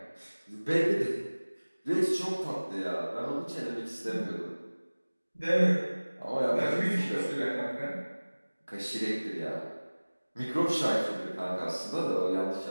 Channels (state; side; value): inverted; both; correlation -1.00